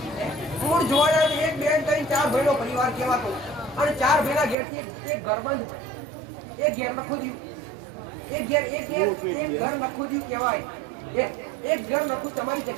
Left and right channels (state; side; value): drops out; left; at 4.5 s